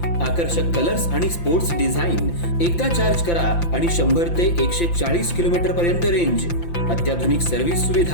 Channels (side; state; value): right; late; 5.8 ms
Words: आकर्षक कलर्स आणि स्पोर्ट्स डिझाइन। एकदा चार्ज करा आणि 100 ते 140 किलोमीटर पर्यंत रेंज। अत्याधुनिक सर्व्हिस